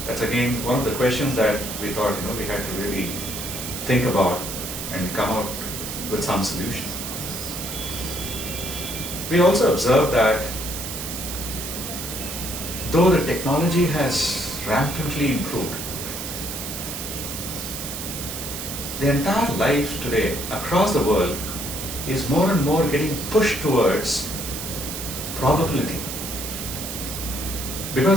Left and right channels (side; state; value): right; noise; hiss, 6 dB below the sound